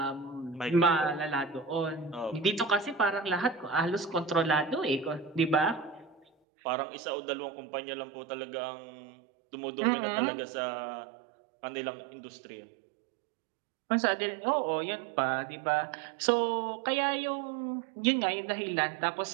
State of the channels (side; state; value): left; drops out; at 6.2 s